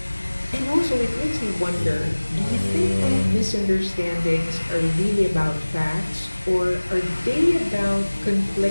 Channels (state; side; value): inverted; both; correlation -1.00